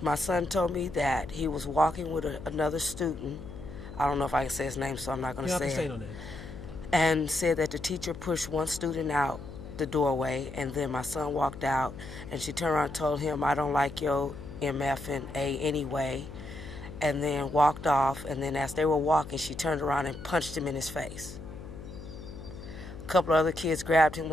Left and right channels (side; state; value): left; noise; hum, 12 dB below the sound